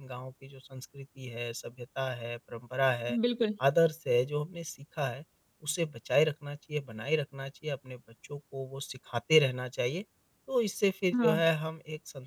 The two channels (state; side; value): identical; both; correlation 1.00